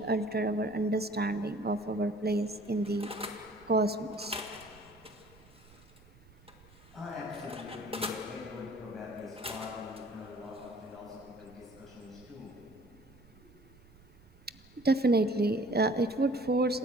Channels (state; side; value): noise; right; rumble, 25 dB below the sound